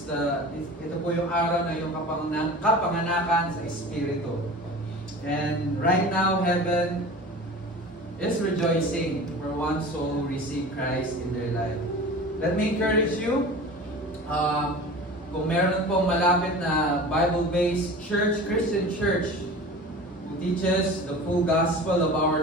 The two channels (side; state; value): both; normal; correlation 0.37